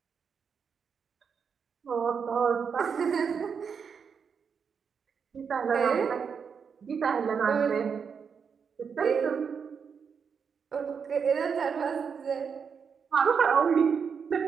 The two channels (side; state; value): left; quieter; 6.4 dB